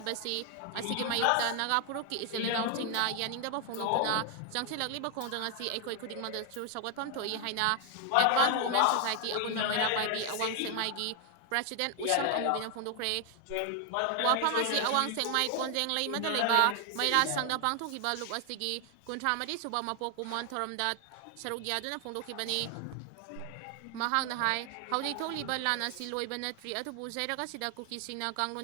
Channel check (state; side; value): different; both; correlation 0.00